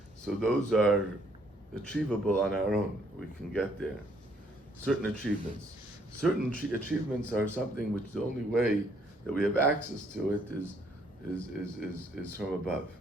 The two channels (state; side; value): normal; both; correlation 0.67